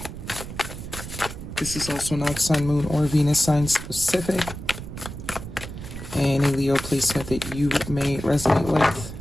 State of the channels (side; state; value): right; noise; rumble, 10 dB below the sound